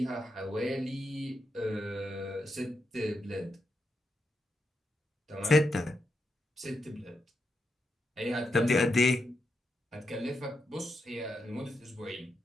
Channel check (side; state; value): both; normal; correlation 0.84